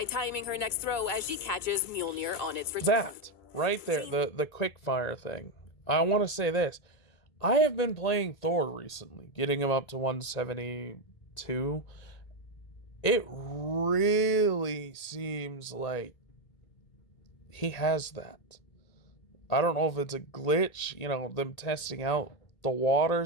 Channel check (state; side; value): late; right; 1.9 ms